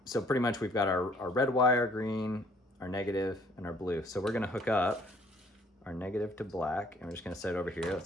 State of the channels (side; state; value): both; normal; correlation 0.60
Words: so pretty much we've got our red wire, green, our negative, and our blue. So we're gonna hook up our negative to black, and we're just gonna set it over here.